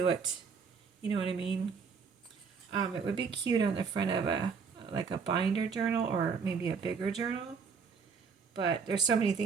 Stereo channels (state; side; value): quieter; left; 5.7 dB